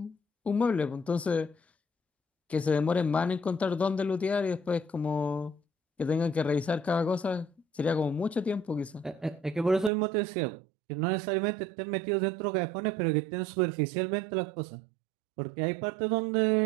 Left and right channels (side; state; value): left; drops out; at 9.9 s